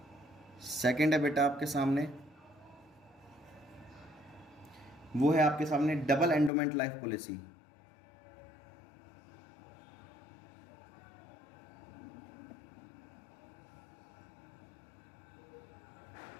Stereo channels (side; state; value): right; drops out; at 6.5 s